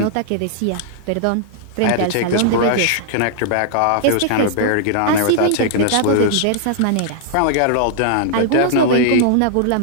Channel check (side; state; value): both; different; correlation -0.01